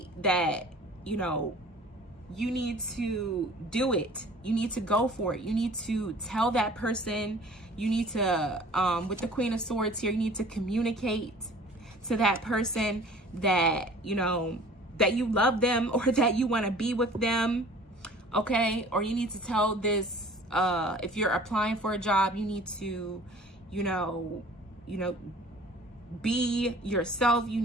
that, you know, you need to do it. You need to go for it. You need to tell that person. You need to, with the Queen of Swords here, you need to communicate to that person that, you know, that you love them or that you want to be with them. Okay. Or you need to tell this, if you're applying for a job, you need to, you know, be yourself. You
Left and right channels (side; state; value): both; normal; correlation 0.48